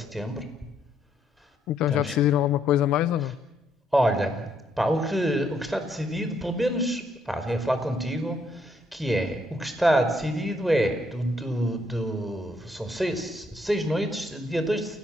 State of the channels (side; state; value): both; normal; correlation 0.72